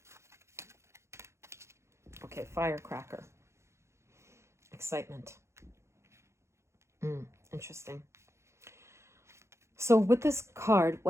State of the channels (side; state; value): left; late; 0.13 ms